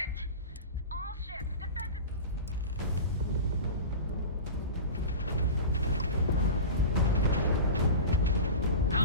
All ships, defensive... How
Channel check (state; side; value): inverted; both; correlation -0.30